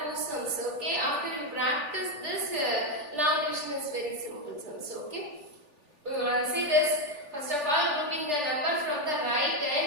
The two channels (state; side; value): late; left; 3.4 ms